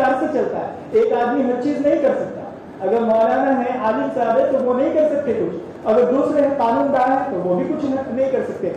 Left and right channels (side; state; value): both; identical; correlation 1.00